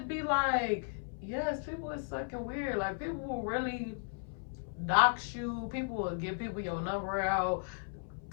be like, yes, people is fucking weird. Like, people will really dox you. People will give people your number out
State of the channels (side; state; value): right; silent; 54 dB below the other